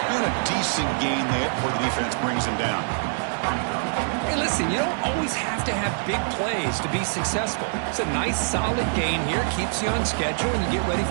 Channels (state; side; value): silent; left; digital silence